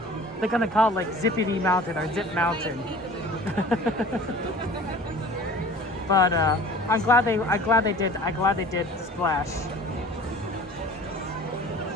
They're going to call it like Zippity Mountain or Zip Mountain. But I'm glad they did Splash.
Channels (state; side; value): normal; both; correlation 0.44